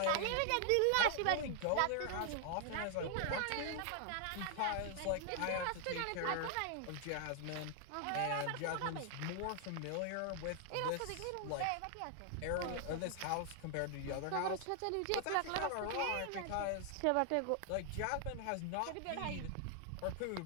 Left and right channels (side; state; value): both; different; correlation 0.00